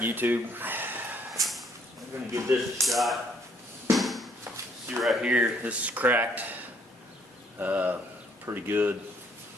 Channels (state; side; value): normal; both; correlation 0.66